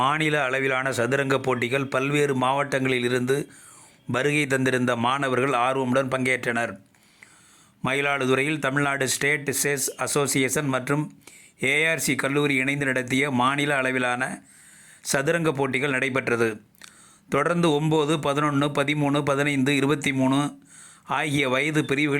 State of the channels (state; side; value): identical; both; correlation 1.00